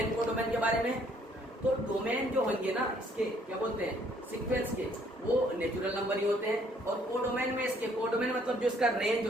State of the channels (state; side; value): normal; both; correlation 0.64